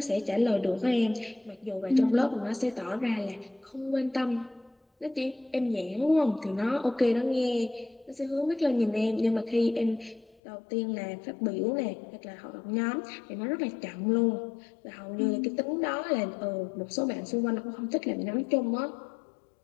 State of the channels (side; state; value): right; drops out; at 10.4 s